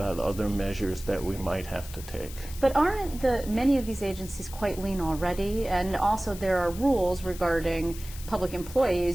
other measures that we might have to take. But aren't many of these agencies quite lean already? And also there are rules regarding public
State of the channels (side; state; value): left; noise; hiss, 15 dB below the sound